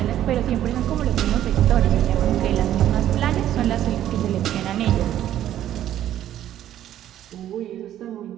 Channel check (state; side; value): quieter; left; 11.9 dB